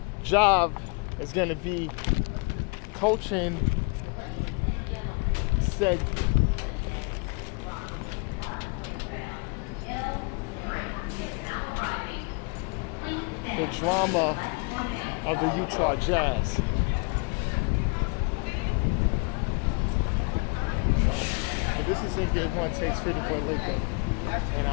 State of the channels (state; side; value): quieter; right; 32.1 dB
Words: job is going to be coaching said the drama of the Utah Jazz. So this is it. Onetake, Pretty Boy Laker, and